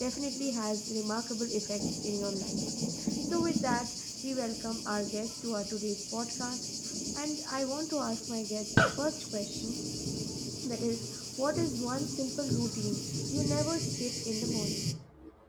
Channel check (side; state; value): both; identical; correlation 1.00